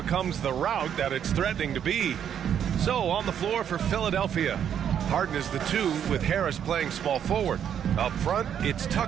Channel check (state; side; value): quieter; left; 9.0 dB